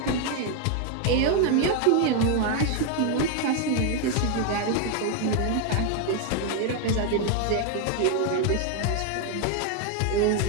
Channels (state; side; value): different; both; correlation 0.01